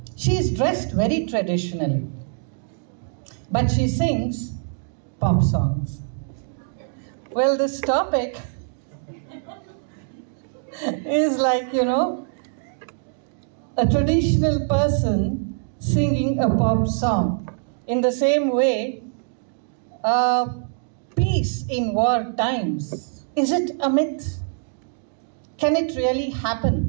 she is dressed very traditionally, but she sings pop songs. Well, this topic is like, a traditional person singing a pop song. In the same way, peace in war times, is it a myth? Can it really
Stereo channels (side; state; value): left; silent; digital silence